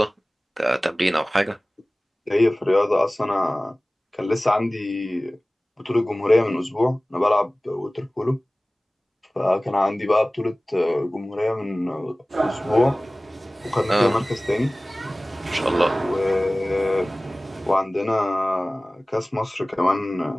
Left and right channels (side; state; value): both; normal; correlation 0.98